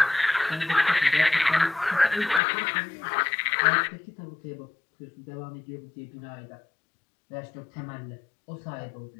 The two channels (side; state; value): right; drops out; at 2.4 s